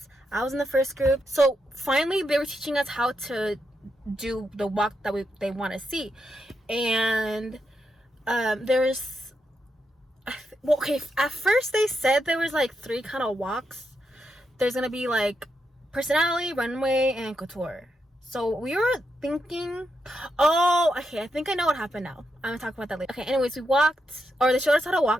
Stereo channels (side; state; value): both; normal; correlation 0.83